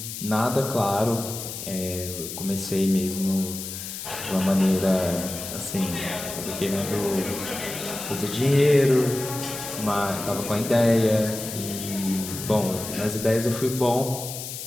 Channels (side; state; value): left; noise; hiss, 8 dB below the sound